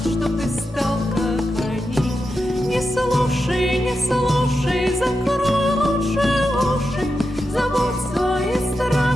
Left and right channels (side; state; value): both; normal; correlation 0.89